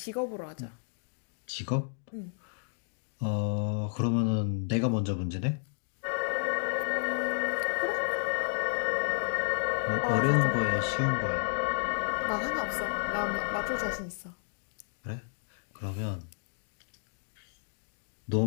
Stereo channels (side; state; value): right; silent; digital silence